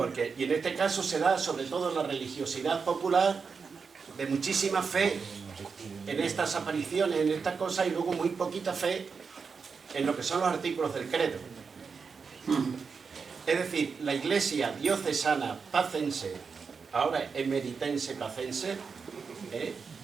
y en este caso se da sobre todo la religiosidad popular de muchísima fe en estas apariciones, en estas cosas, y luego muy poquita fe en lo que son los artículos del credo. Es decir, la Iglesia diocesana pacense, ahora emeritense pacense,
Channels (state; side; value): quieter; left; 5.4 dB